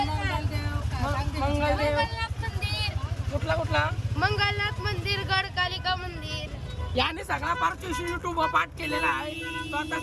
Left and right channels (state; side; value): identical; both; correlation 1.00